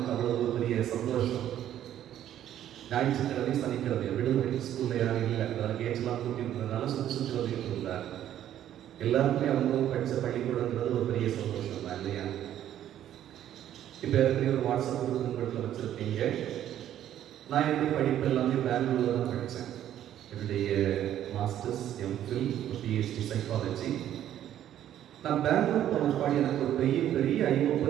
அவ்வளோ ஒரு பெரிய சந்தோஷம். ஞாயிற்றுக்கிழமை சனிக்கிழமை விடுமுறை, ஸ்கூலில் யாரும் இல்லை, அதனால் கேட்செல்லாம் கூட்டியிருந்ததுனால சுற்றி வந்துட்டு இருந்தார். எல்லாருக்குமே அவங்க படித்த பள்ளிக்கூடங்கிறது ஒரு பெரிய சந்தோஷம் தான் இல்லையா? இப்போ ஏற்கனவே ஒரு வாட்ஸ்அப் குரூப் உங்கள்கிட்ட வச்சுருப்பீங்க. நான் எப்படி படிப்பு எல்லாமே பெங்களூரில் தான் படித்தேன். என்னுடைய மாஸ்டர்ஸ், எம்ஃபில், பிஹெச்டி சைக்காலஜி. நான் பெங்களூர் போன பாடி எனக்கு ஒரு பெரிய ஐ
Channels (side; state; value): left; quieter; 11.4 dB